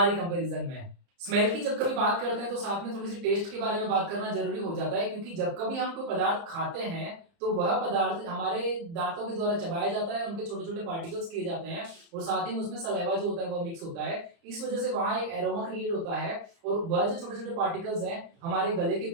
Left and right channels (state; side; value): late; left; 30 ms